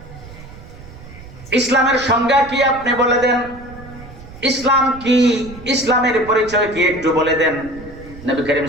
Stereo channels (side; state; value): right; noise; rumble, 17 dB below the sound